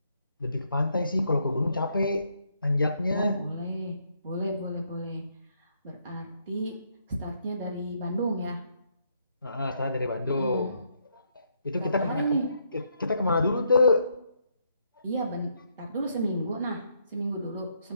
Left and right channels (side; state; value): both; inverted; correlation -0.74